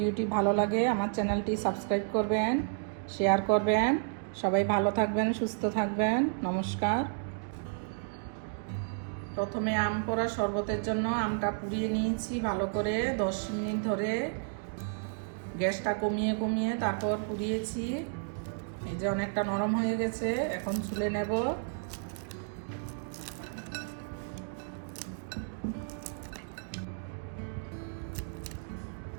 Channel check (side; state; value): left; silent; digital silence